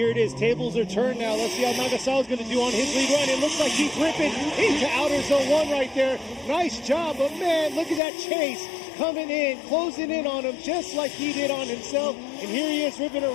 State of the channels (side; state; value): right; drops out; at 8.0 s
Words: it is. Tables are turned now. Let's see how Nagasawa's going to do on his lead run. It looks like he's ripping into outer zone 1 right there. Nice job. But man, look at that chase coming in, closing in on him just like he did on himself. And here he is ripping